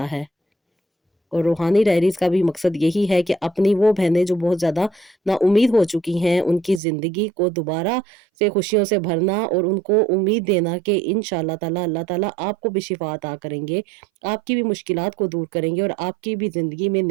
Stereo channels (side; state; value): left; drops out; at 6.8 s